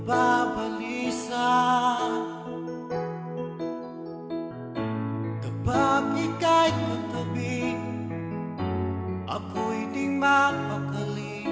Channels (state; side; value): identical; both; correlation 1.00